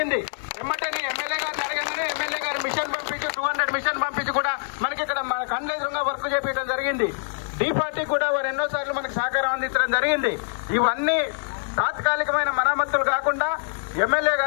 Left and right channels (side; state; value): right; silent; digital silence